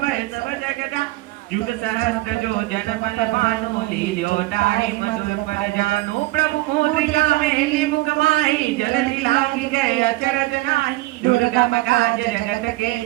भय सब जगदा जुग सहस्त्र जो जन पन भानु लील्यो ताहि मधुर पर जानो प्रभु मोद्रिका मेली मुख माही जलधि लागी गए अचरज नाही दुर्गम काज जगत के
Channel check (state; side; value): quieter; left; 19.6 dB